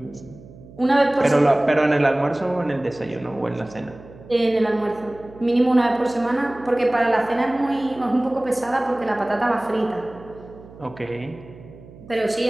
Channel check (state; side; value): noise; right; hum, 20 dB below the sound